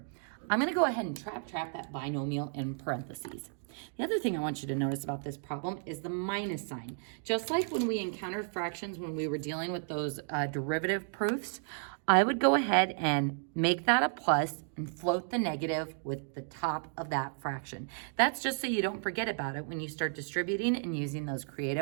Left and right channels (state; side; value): silent; left; 56 dB below the other